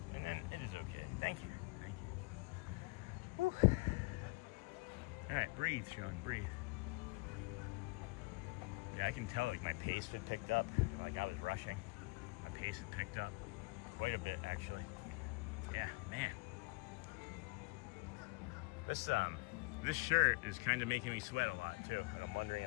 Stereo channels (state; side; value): quieter; right; 26.2 dB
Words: And then it is okay. Thank you. Whew. All right, breathe, Sean, breathe. Yeah, I can tell, like, my pace had picked up. Like, I was rushing. My pace had picked up quite a bit, actually. Yeah, man. This shirt is kind of making me sweat a lot, too. And I'm wondering